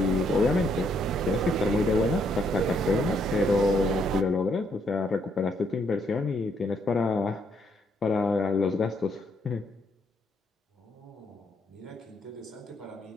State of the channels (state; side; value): normal; both; correlation 0.72